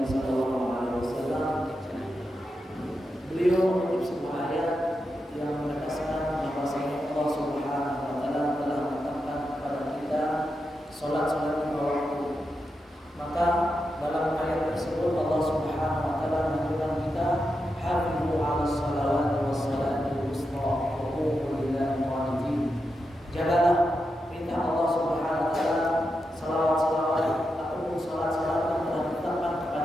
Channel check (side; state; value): both; normal; correlation 0.87